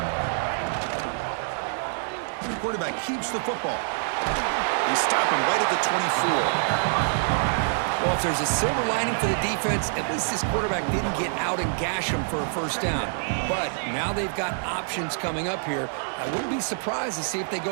The quarterback keeps the football. They stop him right at the 24. Well, if there's a silver lining for the defense, at least this quarterback didn't get out and gash him for a first down. But now they've got options coming up here. I wouldn't be surprised to see if they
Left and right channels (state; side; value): silent; left; digital silence